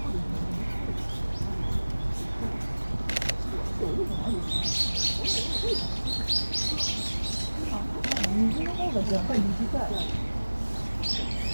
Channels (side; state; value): both; inverted; correlation -1.00